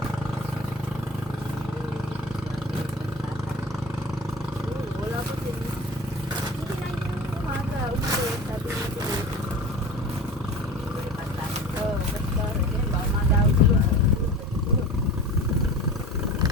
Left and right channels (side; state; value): both; normal; correlation 0.36